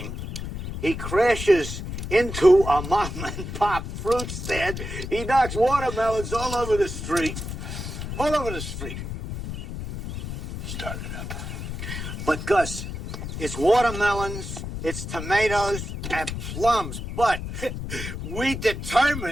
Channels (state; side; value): noise; left; rumble, 7 dB below the sound